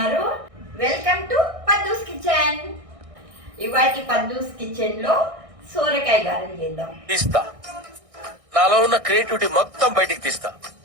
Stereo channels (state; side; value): late; left; 1.6 ms